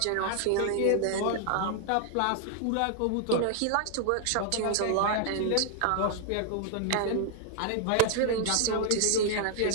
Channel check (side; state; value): both; different; correlation 0.00